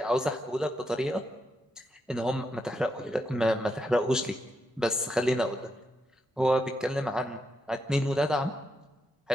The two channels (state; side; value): normal; both; correlation 0.82